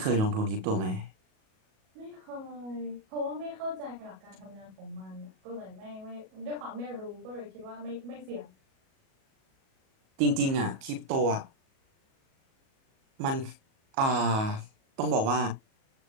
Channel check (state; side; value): late; left; 37 ms